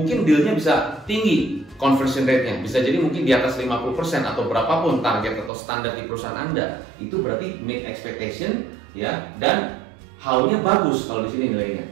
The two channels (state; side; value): drops out; left; at 5.5 s